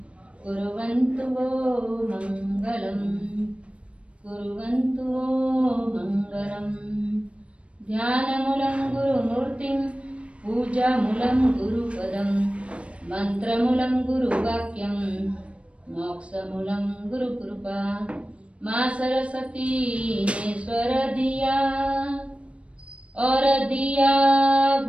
कुर्वन्तु वो मंगलम् कुर्वन्तु वो मंगलम् ध्यानमूलं गुरुमूर्तिं पूजामूलं गुरुपदं मंत्रमूलं गुरुवाक्यं मोक्षमूलं गुरुकृपा मां सरस्वती ने स्वर दिया और दिया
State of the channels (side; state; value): left; late; 0.061 ms